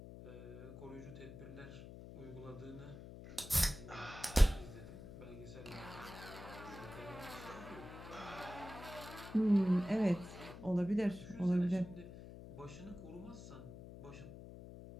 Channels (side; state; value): left; noise; hum, 13 dB below the sound